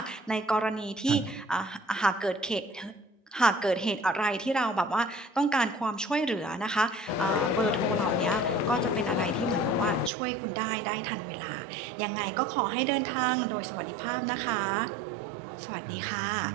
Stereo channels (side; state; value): left; drops out; at 10.1 s